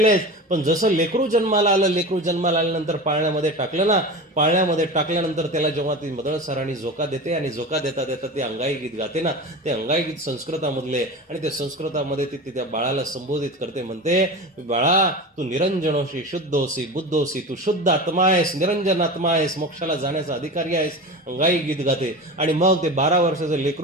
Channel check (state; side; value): normal; both; correlation 0.29